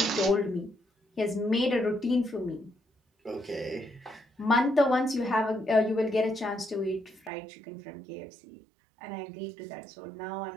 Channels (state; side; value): drops out; left; at 7.3 s